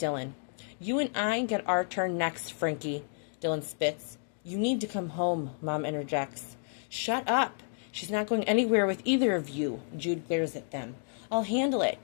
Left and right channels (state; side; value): silent; right; digital silence